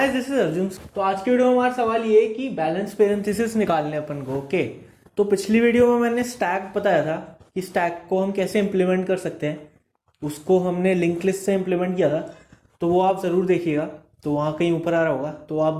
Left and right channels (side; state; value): both; identical; correlation 1.00